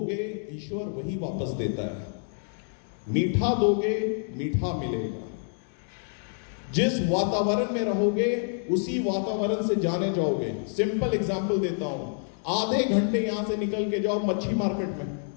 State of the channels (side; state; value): right; silent; 60 dB below the other